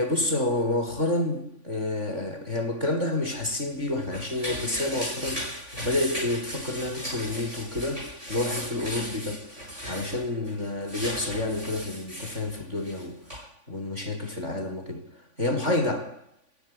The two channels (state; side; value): late; left; 3.5 ms